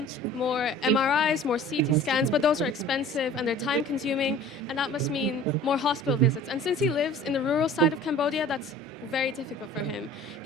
more MRIs, more CT scans, but those are expensive and they're time-consuming, and that must mean more hospital visits. And since he lives in the rural side of Cambodia, that's very difficult for him.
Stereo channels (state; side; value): normal; both; correlation 0.45